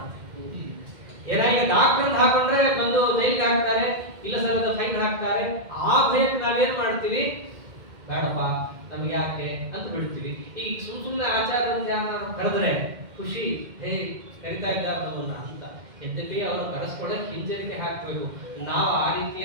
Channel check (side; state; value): left; late; 2.1 ms